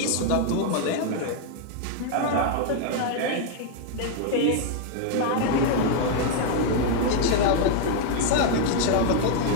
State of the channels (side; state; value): both; different; correlation 0.00